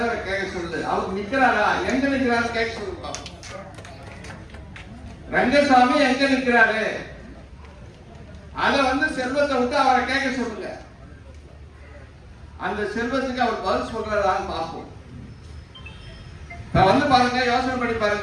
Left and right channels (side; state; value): both; identical; correlation 1.00